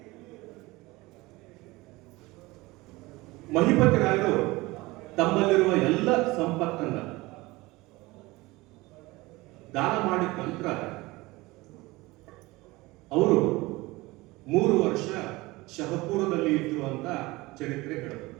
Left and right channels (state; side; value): quieter; left; 21.3 dB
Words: ಮಹಿಪತಿ ರಾಯರು ತಮ್ಮಲ್ಲಿರುವ ಎಲ್ಲ ಸಂಪತ್ತನ್ನ ದಾನ ಮಾಡಿದ ನಂತರ ಅವರು 3 ವರ್ಷ ಶಹಪುರದಲ್ಲಿ ಇದ್ರು ಅಂತ ಚರಿತ್ರೆ ಹೇಳುತ್ತೆ.